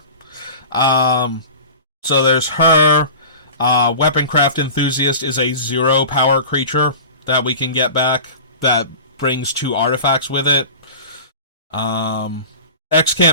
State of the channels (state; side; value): inverted; both; correlation -0.36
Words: Um, so there's her. Weaponcraft Enthusiast is a 0 power creature that we can get back that brings 2 artifacts with it. X